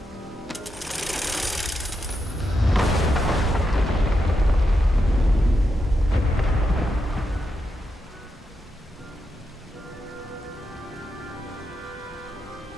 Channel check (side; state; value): both; normal; correlation 0.85